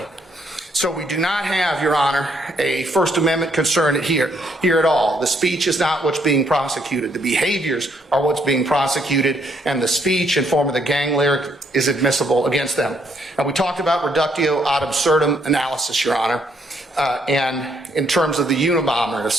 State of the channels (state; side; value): normal; both; correlation 0.71